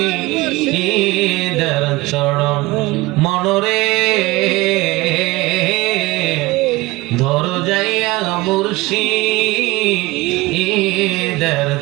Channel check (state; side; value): quieter; left; 21.0 dB